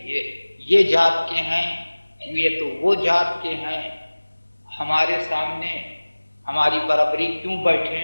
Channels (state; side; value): inverted; both; correlation -1.00